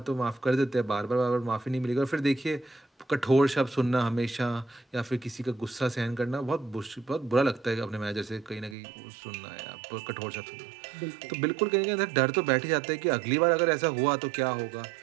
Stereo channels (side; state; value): left; drops out; at 8.8 s